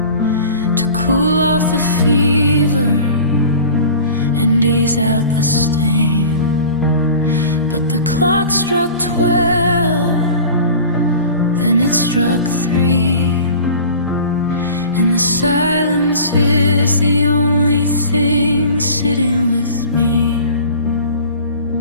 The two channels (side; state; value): both; inverted; correlation -0.39